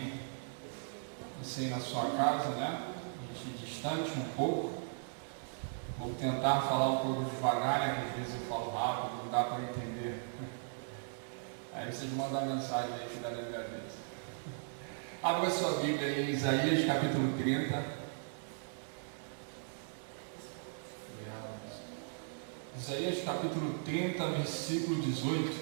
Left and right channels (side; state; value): left; silent; digital silence